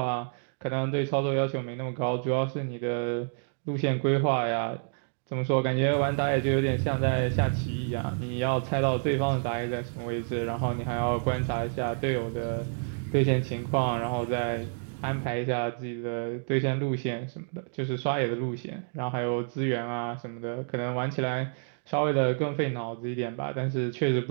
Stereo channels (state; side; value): silent; left; digital silence